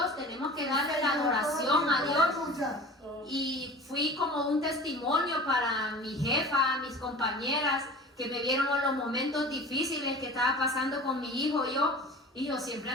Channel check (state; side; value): normal; both; correlation 0.39